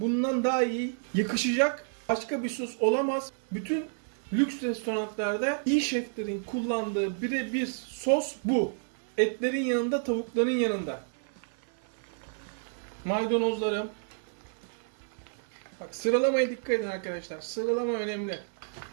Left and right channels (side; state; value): left; silent; 58 dB below the other